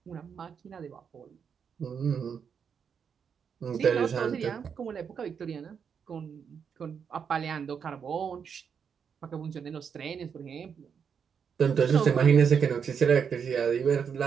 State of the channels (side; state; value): left; quieter; 7.0 dB